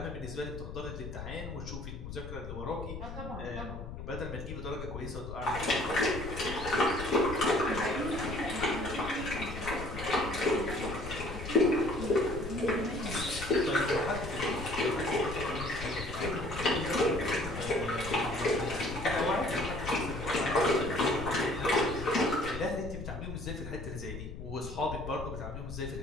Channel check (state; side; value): noise; left; rumble, 9 dB below the sound